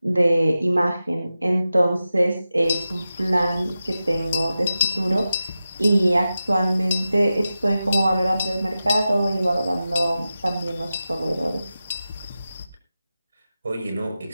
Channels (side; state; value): both; inverted; correlation -0.93